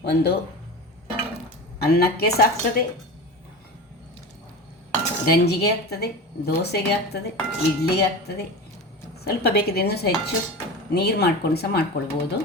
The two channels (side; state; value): both; normal; correlation 0.29